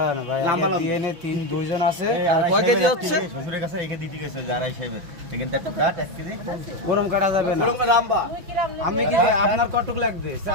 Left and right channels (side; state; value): left; late; 6.0 ms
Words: লম্বা ডিএনএ 2 জন আছে। আর কয় কেজি হচ্ছে? শ্বশুরের কাছে রেখে দিতে গেছে যারা হিসেবে এখানটা একটু কাট 1 কেজি ওরম কাটা যাবে না। আমি কি আপনার কতটুকু লাগবে?